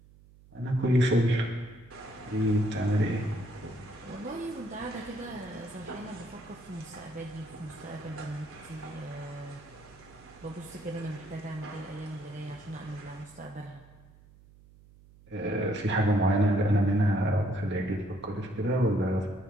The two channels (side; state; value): right; noise; hum, 24 dB below the sound